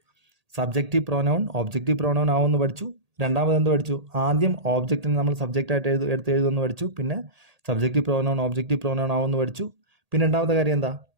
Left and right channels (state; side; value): late; left; 1.8 ms